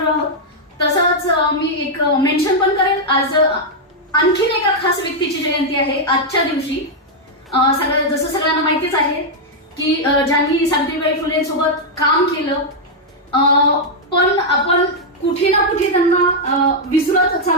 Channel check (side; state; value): both; normal; correlation -0.03